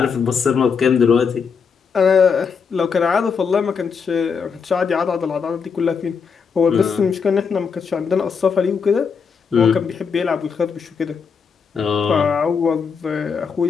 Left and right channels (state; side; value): quieter; right; 6.0 dB